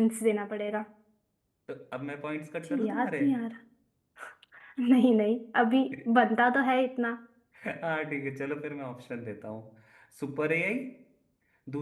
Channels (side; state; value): both; identical; correlation 1.00